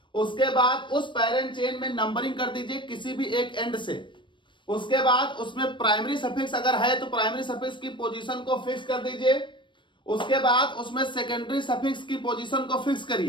उसके बाद उस पेरेंट चेन में नंबरिंग कर दीजिए किसी भी एक एंड से। उसके बाद उसमें प्राइमरी सफिक्स अगर है तो प्राइमरी सफिक्स की पोजीशन को फिक्स कर दीजिए। उसके बाद उसमें सेकेंडरी सफिक्स की पोजीशन को फिक्स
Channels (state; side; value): late; right; 0.23 ms